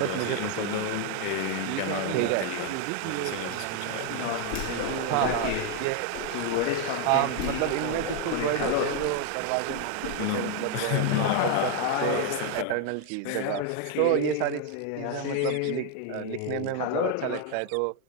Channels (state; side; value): different; both; correlation 0.01